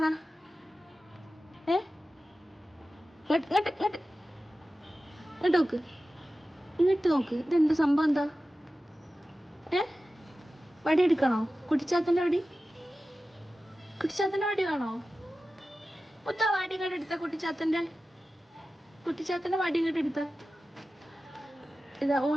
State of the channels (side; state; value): both; normal; correlation 0.95